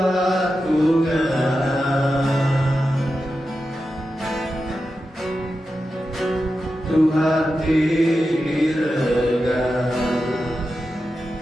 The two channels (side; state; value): both; normal; correlation 0.90